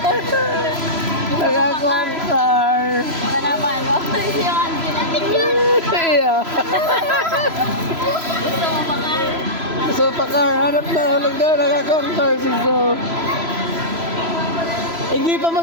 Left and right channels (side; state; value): left; late; 3.0 ms